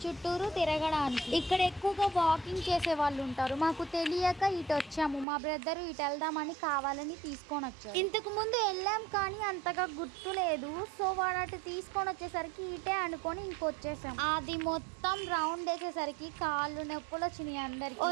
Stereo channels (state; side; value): drops out; left; at 5.2 s